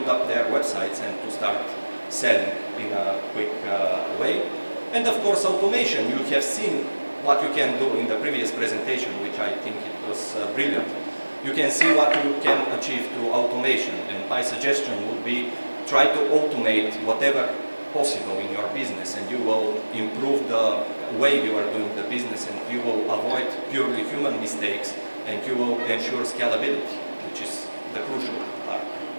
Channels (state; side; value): inverted; both; correlation -1.00